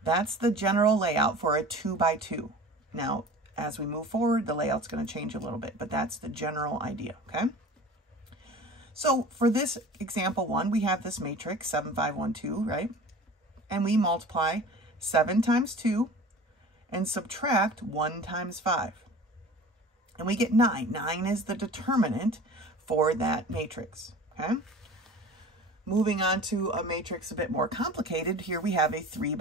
That's the general layout for a 2 by 2. Now, as we move forward, the layout's going to change a little bit, but that's the general idea, okay? So for this example 1, we have this matrix, 7, 5, 1, 2, right? And we multiply 7 times 2 and subtract 1 times 5. And we get 9. 9 is the determinant for that matrix, okay? Moving on to a matrix a bit more complicated, here we have a 3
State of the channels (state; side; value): normal; both; correlation 0.39